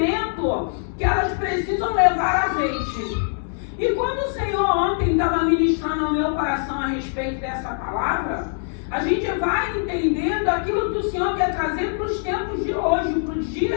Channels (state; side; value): silent; right; digital silence